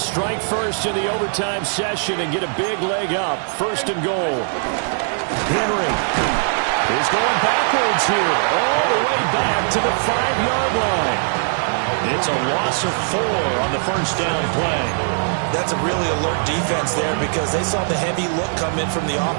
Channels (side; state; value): left; silent; digital silence